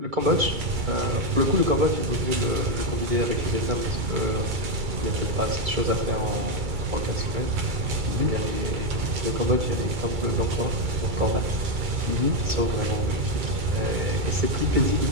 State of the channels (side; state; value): left; late; 2.3 ms